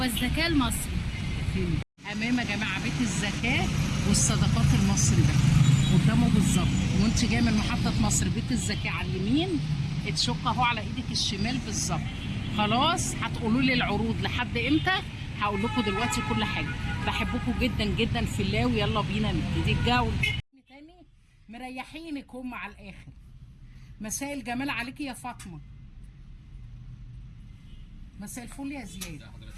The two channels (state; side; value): identical; both; correlation 1.00